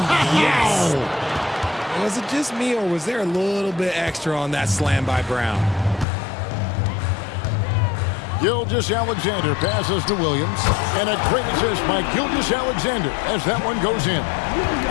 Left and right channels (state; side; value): drops out; right; at 6.1 s